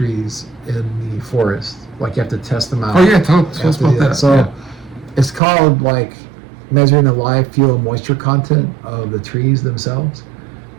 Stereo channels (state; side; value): drops out; left; at 5.4 s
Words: in the forest. Like you have to test them out. Oh yeah, tell us about that. So it's called like measuring the live fuel moisture content of the trees themselves.